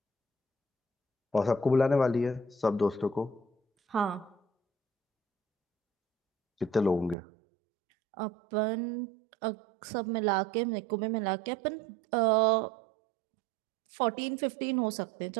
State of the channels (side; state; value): left; drops out; at 7.2 s